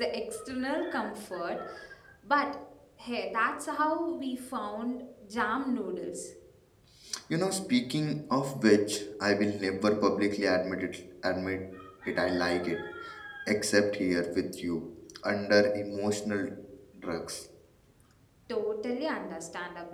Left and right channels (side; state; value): both; identical; correlation 1.00